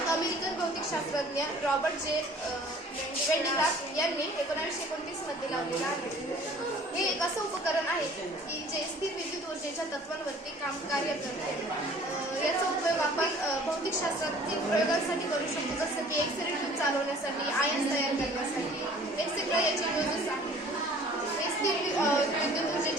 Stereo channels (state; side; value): normal; both; correlation 0.51